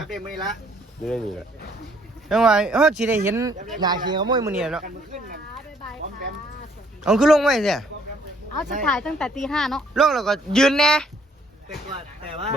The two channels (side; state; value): both; normal; correlation 0.64